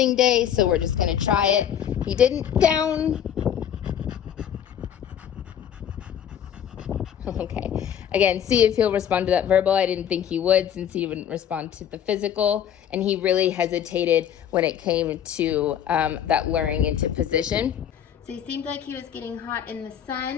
day, so we're just gonna try it. He didn't down. Okay, again, see if he'll respond to that verbal. I didn't think he would since he wouldn't respond to the physical. And he really hesitated when it came to that luring into position. So he seemed like he was getting hot in the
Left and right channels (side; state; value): right; quieter; 9.5 dB